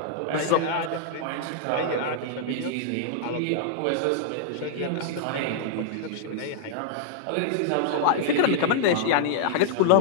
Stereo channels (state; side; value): different; both; correlation -0.01